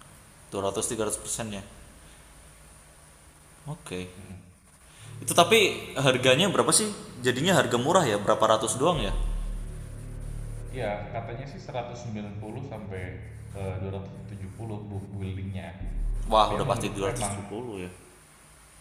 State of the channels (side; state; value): both; identical; correlation 1.00